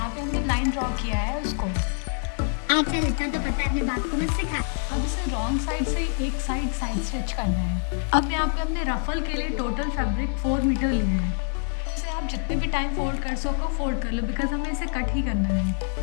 पे हमने लाइन ड्रॉ किया है उसको। चल इतना तो पता है, अपने बाप को मत सिखा। अब इसे रॉन्ग साइड से एक साइड स्टिच करना है। अब यहाँ पे हमने रफल के लिए टोटल फैब्रिक 4 मीटर लिया है। इसे आप जितने भी टाइम फोल्ड कर सको फोल्ड कर लो, बिकॉज हमें इसे कट ही करना है।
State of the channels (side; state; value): right; silent; 61 dB below the other